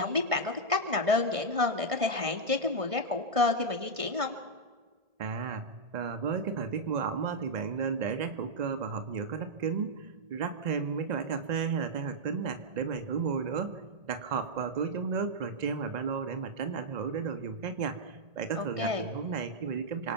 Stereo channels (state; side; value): late; left; 1.5 ms